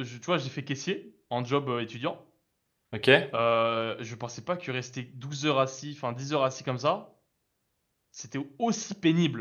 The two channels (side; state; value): both; identical; correlation 1.00